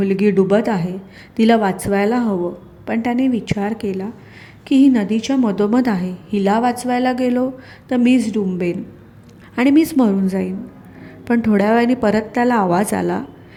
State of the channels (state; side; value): identical; both; correlation 1.00